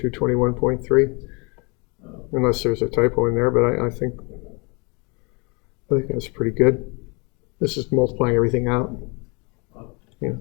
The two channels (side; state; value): right; quieter; 30.3 dB